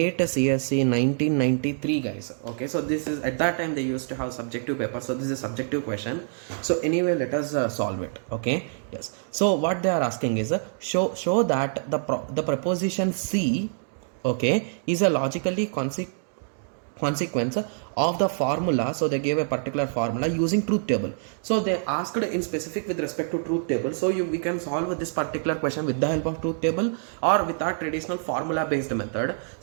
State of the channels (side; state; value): left; silent; digital silence